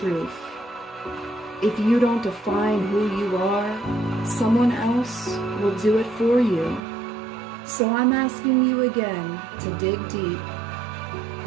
If you don't define who you are, someone else will do it for you. So I'm asking you again to dig deep.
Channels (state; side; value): drops out; left; at 6.8 s